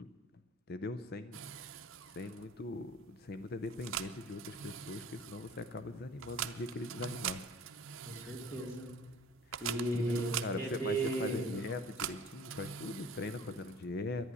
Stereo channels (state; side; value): normal; both; correlation 0.46